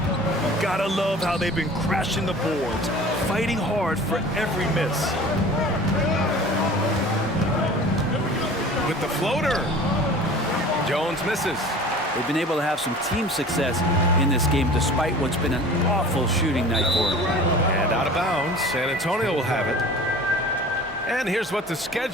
Gotta love how they've been crashing the boards, fighting hard for every miss. With the floater. Jones misses. They've been able to have some team success in this game despite what's been an awful shooting night for them. And out of bounds, San Antonio will have it. And here's what the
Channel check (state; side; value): normal; both; correlation 0.42